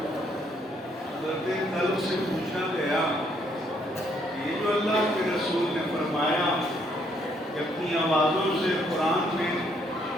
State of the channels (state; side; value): normal; both; correlation 0.69